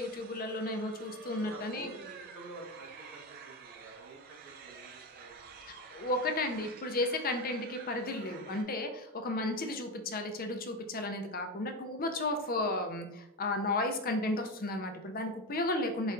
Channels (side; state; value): both; normal; correlation 0.17